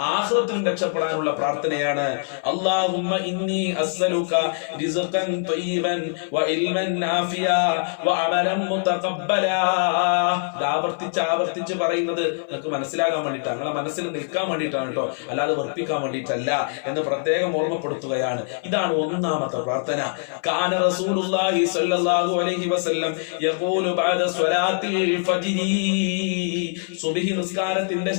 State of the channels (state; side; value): silent; right; 58 dB below the other